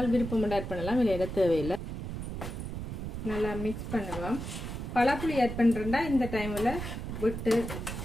விருப்பம் ஆட் பண்ணலாம், இல்லையா தேவையில்லை. நல்லா மிக்ஸ் பண்ணுவோம். பழப்புளி ஆட் பண்ணுறேன்டா இந்த டைமில் விட்டு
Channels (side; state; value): right; noise; rumble, 6 dB below the sound